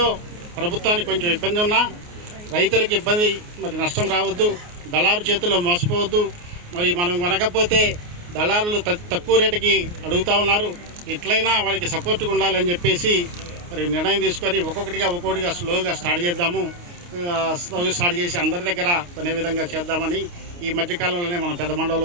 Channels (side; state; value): left; late; 29 ms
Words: ప్రభుత్వానికి కొంచెం ఇబ్బంది ఉన్నా రైతులకు ఇబ్బంది మరి నష్టం రావద్దు, దళారు చేతుల్లో మోసపోవద్దు. మరి మనం కొనకపోతే దళారులు తక్కువ రేటుకి అడుగుతూ ఉన్నారు, ఎట్లయినా వాళ్ళకి సపోర్ట్గా ఉండాలని చెప్పేసి మరి నిర్ణయం తీసుకొని ఒక్కొక్కటిగా స్లోగా స్టార్ట్ చేద్దాము, స్టార్ట్ చేసి అందరి దగ్గర కొనే విధంగా చేద్దామని ఈ మధ్యకాలంలోనే మనం పెద్ద